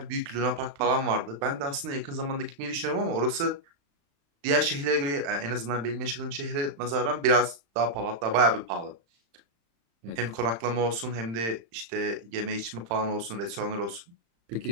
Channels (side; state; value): left; late; 35 ms